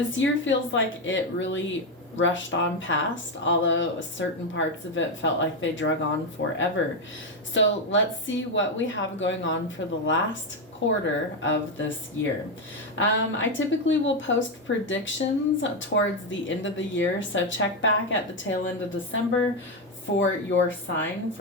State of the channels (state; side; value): normal; both; correlation 0.07